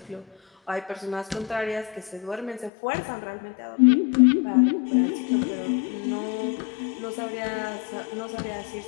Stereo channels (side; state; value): right; drops out; at 2.7 s